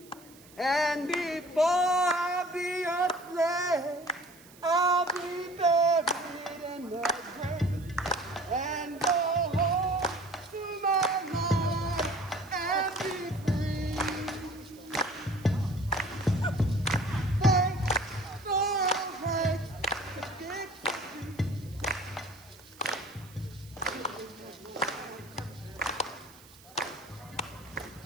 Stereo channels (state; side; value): noise; right; hiss, 23 dB below the sound